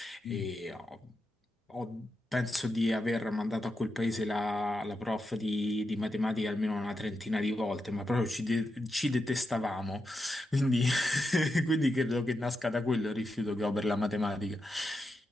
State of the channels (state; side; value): normal; both; correlation 0.87